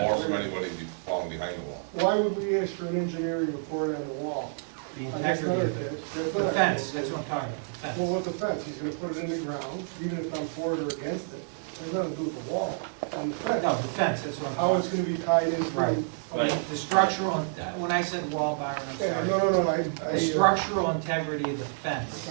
wait a from minute. anybody falling behind the wall. Why would we ask for an engineering report on the wall? The That's not integrity our of case. the, That's the not our fence, case. that's what I'm talking about, the Well, fence. what's the fence? He's gonna put it in the ground, even if I'm for it or against it. There's nothing to do with the wall. On the fence, No, the fence, that's what I'm how it's talking gonna be tied into. Right. about. The structural, when I said wall, Byron, I'm Yeah, sorry. no, The structural integrity of the fence.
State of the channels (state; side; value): silent; left; 59 dB below the other